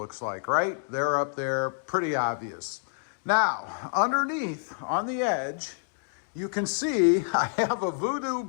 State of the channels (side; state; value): right; silent; digital silence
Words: like, right? They're up there, pretty obvious. Now, underneath, on the edge, you can see I have a Voodoo